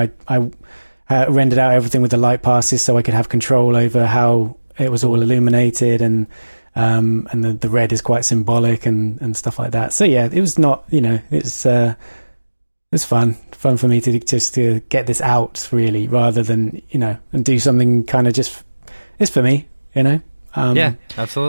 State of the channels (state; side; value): inverted; both; correlation -1.00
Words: I rendered out everything with the light passes so I could have control over how it was all illuminated, and the red is quite symbolic and stuff like that. So yeah, it was not, you know, it's fun for me to get this out, really, rather than, you know, and do something kind of just, it's for me, you know. Yeah,